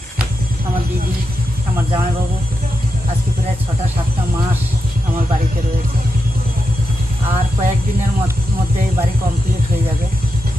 আমার দিদি, আমার জামাইবাবু আজকে প্রায় 6-7টা মাস আমার বাড়িতে রয়েছে। আর কয়েকদিনের মধ্যে বাড়ি কমপ্লিট হয়ে যাবে।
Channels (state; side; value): normal; both; correlation 0.88